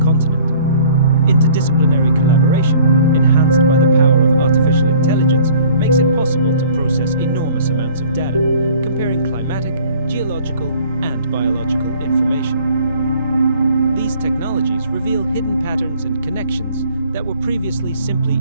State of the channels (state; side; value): inverted; both; correlation -0.53